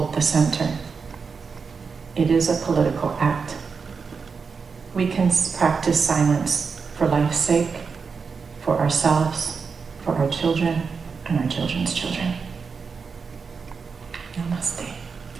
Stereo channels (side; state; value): left; quieter; 5.3 dB